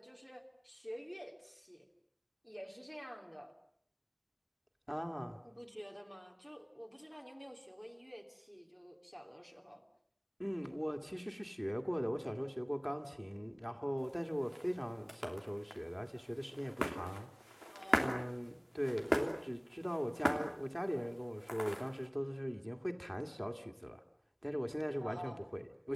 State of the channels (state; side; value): identical; both; correlation 1.00